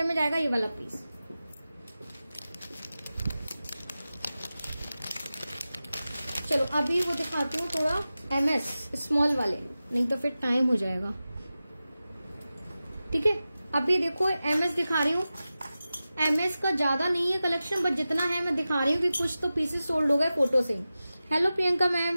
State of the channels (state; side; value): inverted; both; correlation -0.94